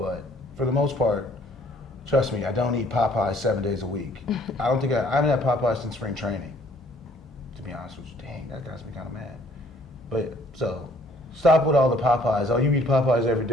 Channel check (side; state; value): both; normal; correlation 0.60